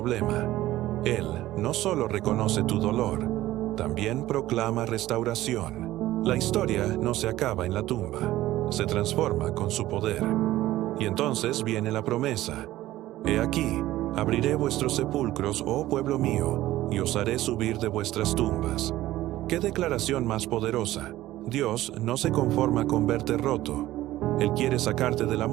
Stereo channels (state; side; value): quieter; left; 15.5 dB